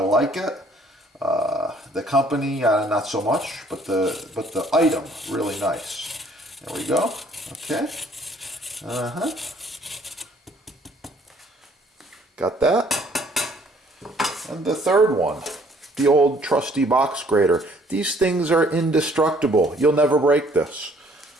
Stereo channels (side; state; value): both; normal; correlation 0.60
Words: it. The company, not so much, but the item, really nice. There we go. Okay. Got that. And the third one, the old trusty box grater. These things are indestructible. You'll never break this.